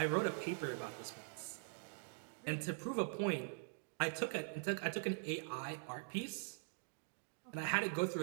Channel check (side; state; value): left; silent; digital silence